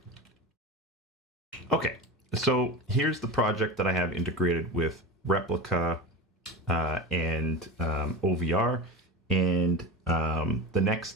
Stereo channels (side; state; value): both; normal; correlation 0.26